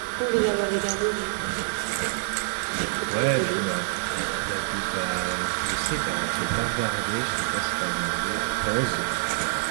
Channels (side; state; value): left; silent; digital silence